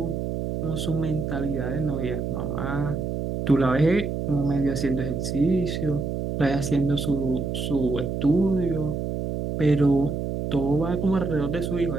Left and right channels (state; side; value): noise; right; hum, 3 dB below the sound